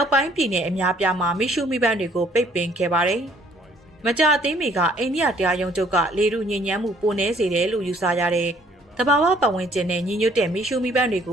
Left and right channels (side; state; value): both; normal; correlation 0.62